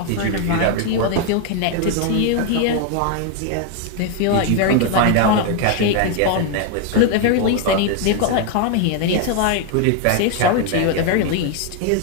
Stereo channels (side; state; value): both; different; correlation 0.01